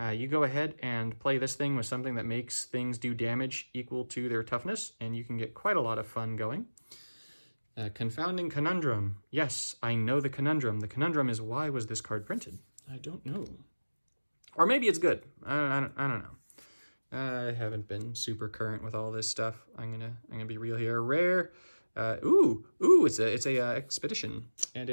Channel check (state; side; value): inverted; both; correlation -1.00